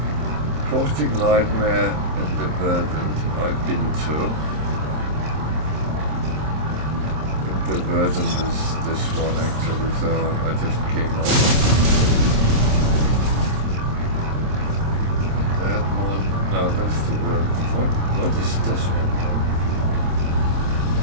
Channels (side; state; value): left; late; 26 ms